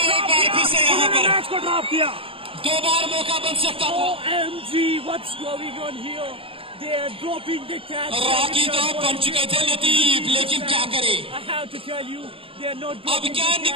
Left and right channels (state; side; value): late; left; 0.27 ms